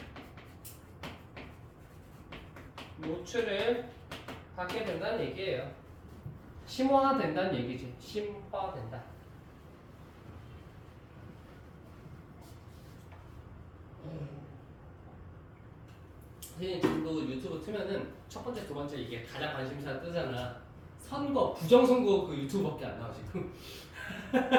노출을 받게 된다는 얘기예요. 심화된다는 얘기지. 심화된다. 지금도 유튜브 트면은 첫 번째, 두 번째 이게 가장 관심사 뜨잖아. 선거, 부정선거 그 유튜브밖에 안 나와 지금.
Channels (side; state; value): both; identical; correlation 1.00